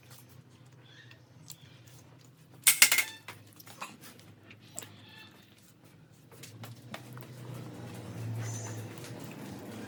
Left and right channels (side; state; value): both; identical; correlation 1.00